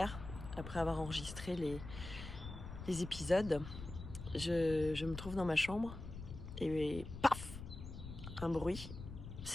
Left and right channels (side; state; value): left; noise; rumble, 10 dB below the sound